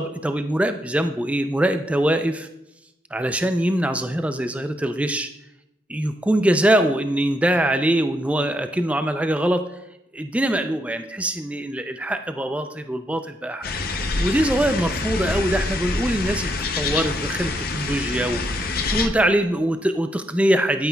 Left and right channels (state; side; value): normal; both; correlation 0.78